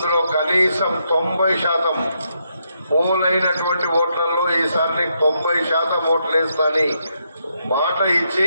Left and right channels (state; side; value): inverted; both; correlation -0.79